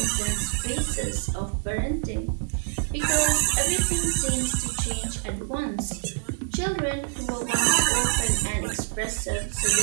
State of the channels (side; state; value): left; silent; digital silence